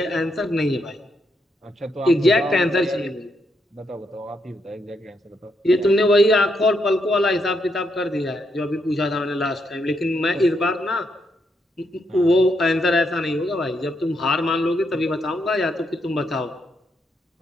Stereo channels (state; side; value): normal; both; correlation 0.79